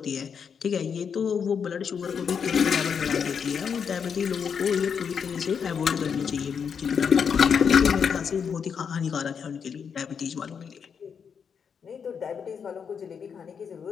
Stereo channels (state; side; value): quieter; right; 6.8 dB